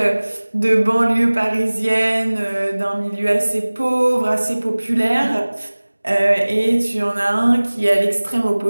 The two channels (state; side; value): inverted; both; correlation -1.00